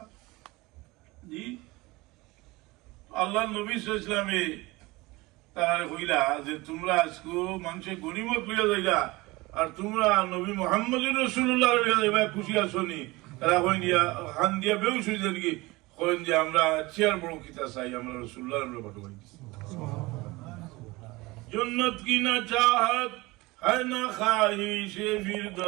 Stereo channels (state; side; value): quieter; left; 21.8 dB